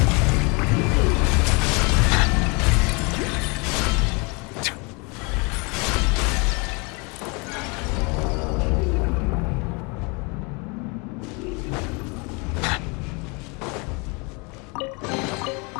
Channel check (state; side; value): quieter; right; 30.3 dB